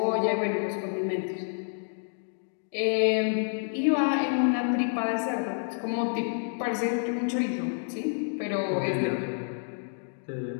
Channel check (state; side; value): silent; right; digital silence